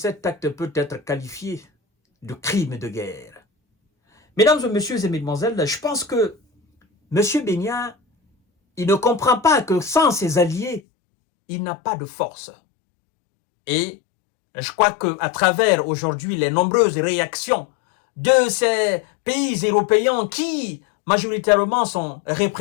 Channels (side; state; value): right; drops out; at 10.8 s